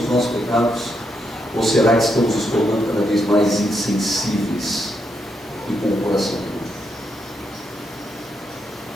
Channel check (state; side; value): normal; both; correlation 0.80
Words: os nossos pecados? Ou será que estamos nos tornando cada vez mais insensíveis e com o coração puro.